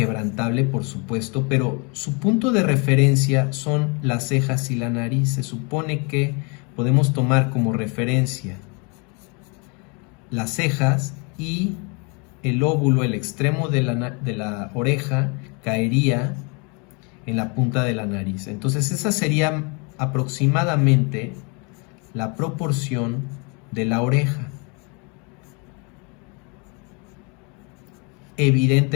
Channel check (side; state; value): right; quieter; 33.0 dB